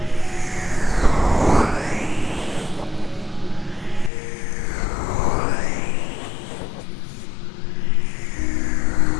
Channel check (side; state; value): right; drops out; at 4.1 s